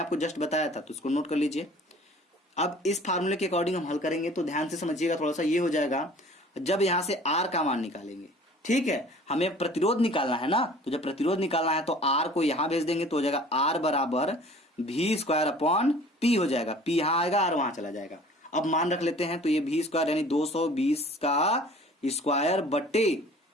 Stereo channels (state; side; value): normal; both; correlation 0.48